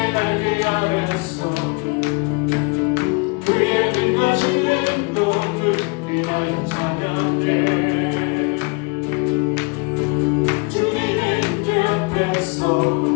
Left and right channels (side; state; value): right; quieter; 31.5 dB